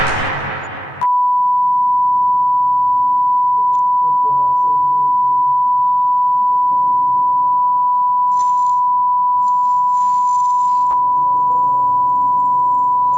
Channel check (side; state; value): right; late; 14 ms